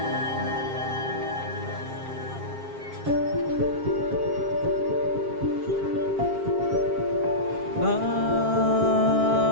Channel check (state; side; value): late; left; 7.5 ms